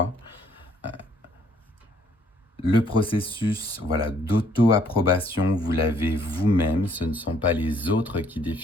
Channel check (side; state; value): both; normal; correlation 0.64